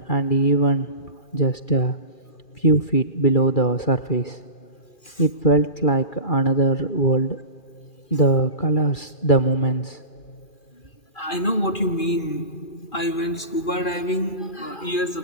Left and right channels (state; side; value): late; right; 2.4 ms